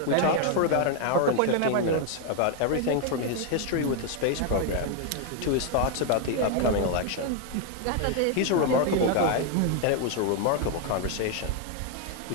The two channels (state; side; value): different; both; correlation 0.00